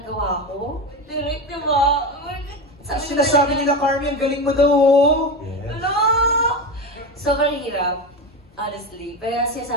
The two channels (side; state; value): both; normal; correlation 0.20